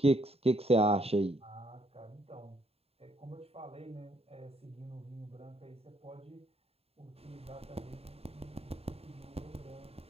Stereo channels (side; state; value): left; late; 0.29 ms